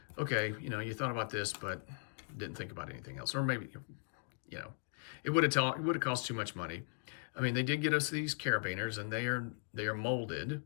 okay, you thought about this, but didn't think about anything else. Or maybe, it would have cost too much money. I mean, they did get us these carabiners, and they are molded.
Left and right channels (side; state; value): right; silent; digital silence